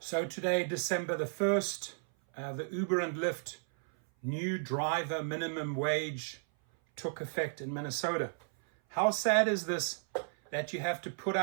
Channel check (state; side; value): silent; left; 55 dB below the other